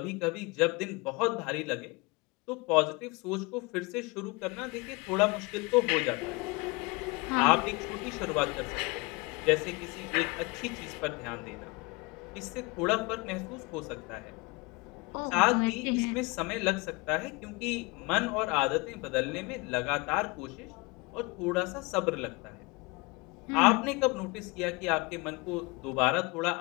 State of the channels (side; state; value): right; quieter; 26.1 dB